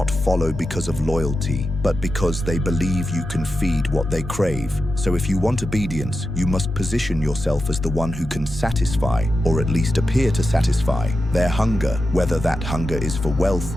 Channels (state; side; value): normal; both; correlation 0.90